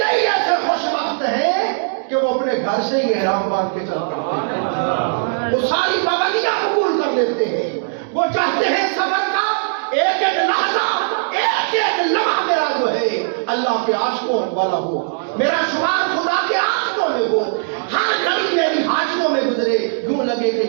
ایسے خوش بخت ہیں کہ وہ اپنے گھر سے ہی احرام باندھ کے چل پڑتے ہیں، وہ ساری پابندیاں قبول کر لیتے ہیں، وہ چاہتے ہیں سفر کا ایک ایک لحظہ، ایک ایک لمحہ میرا جو ہے اللہ کے عاشقوں والا ہو، میرا شمار خدا کے عاشقوں میں ہو، ہر گھڑی میری حاجیوں میں گزرے، یوں لگے کہ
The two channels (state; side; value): silent; left; digital silence